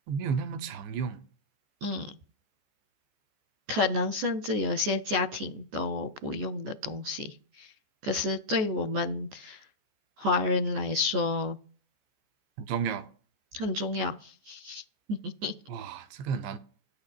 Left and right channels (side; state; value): left; late; 14 ms